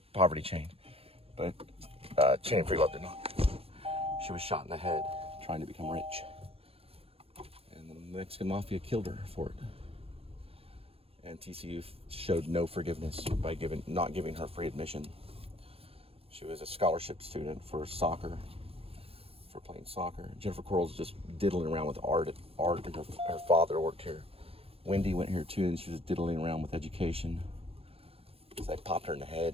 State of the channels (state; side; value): late; left; 0.28 ms